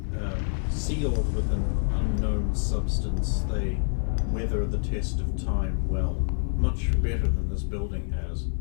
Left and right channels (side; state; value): right; silent; 60 dB below the other